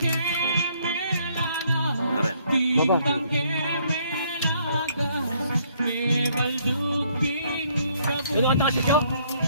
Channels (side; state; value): both; inverted; correlation -0.66